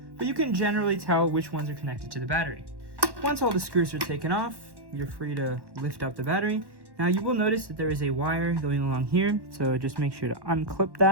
but you can generally tell which ones are connected to the battery. Once all the screws are taken off, you're free to lift up the battery. Now you will notice that there is a wire going along here, so just make sure to unclip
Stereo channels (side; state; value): left; late; 1.1 ms